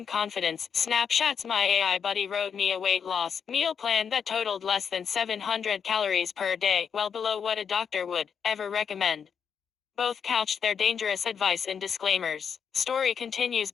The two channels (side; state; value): right; quieter; 7.0 dB